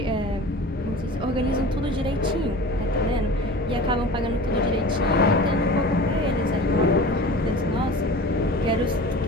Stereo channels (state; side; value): normal; both; correlation 0.37